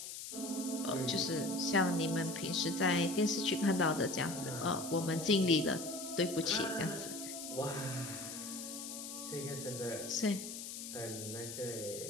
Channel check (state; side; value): noise; left; hiss, 8 dB below the sound